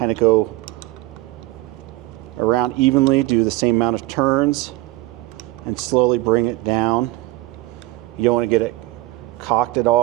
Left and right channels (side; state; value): left; quieter; 18.6 dB